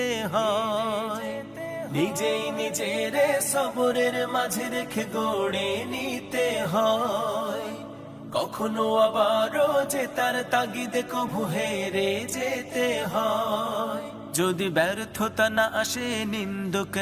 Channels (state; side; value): identical; both; correlation 1.00